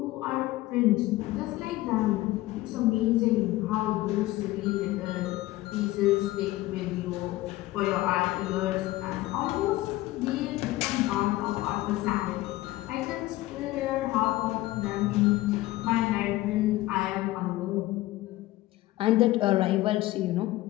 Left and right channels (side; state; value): right; quieter; 17.4 dB